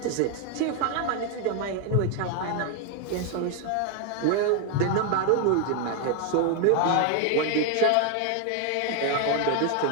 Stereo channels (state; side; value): different; both; correlation 0.01